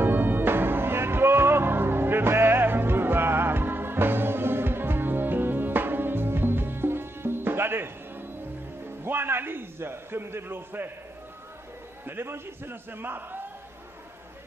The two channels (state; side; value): normal; both; correlation 0.83